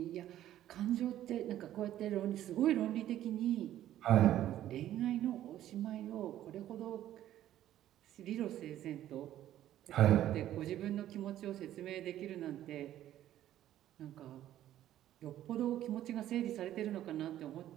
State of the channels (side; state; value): left; quieter; 12.6 dB